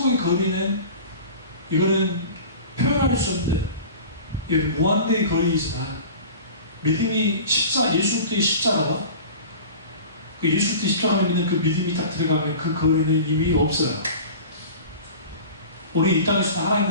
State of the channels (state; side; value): inverted; both; correlation -0.38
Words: 거리는 이거는 표현할 수 없는 이건 무한대의 거리이지만 믿음이 예수 그리스도의 십자가와 그 예수 그리스도의 십자가를 믿는 그 믿음이 딱 들어가면 그 거리는 이미 없어요. 우리 이 땅에서 하나님